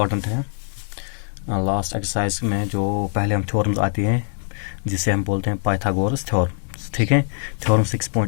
है। लास्ट एक्सरसाइज में जो पहले हम थ्योरम्स आती हैं जिसे हम बोलते हैं पाइथागोरस थ्योरम, ठीक है। थ्योरम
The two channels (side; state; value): right; silent; 64 dB below the other